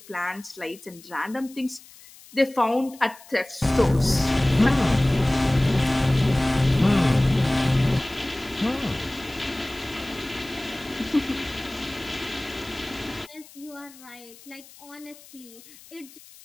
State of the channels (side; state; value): left; noise; hiss, 22 dB below the sound